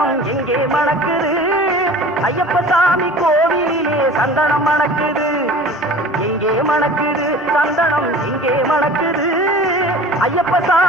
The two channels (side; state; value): both; normal; correlation 0.42